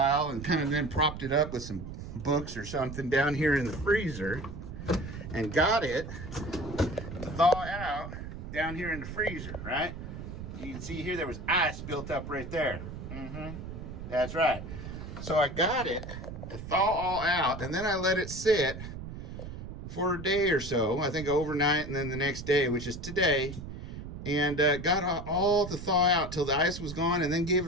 and kind of then propped it up with some books or something down here in the freezer and got it to thaw out down here in the freezer, right? You can see here there was ice built up right there. That's right. So I got it to thaw all out, and then I let it sit for a day or so. I think overnight, and then the next day, which is today, and got all to thaw out till the ice was gone, and then gave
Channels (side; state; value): right; noise; rumble, 9 dB below the sound